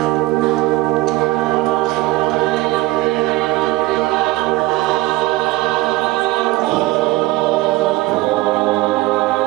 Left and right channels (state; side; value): quieter; left; 18.9 dB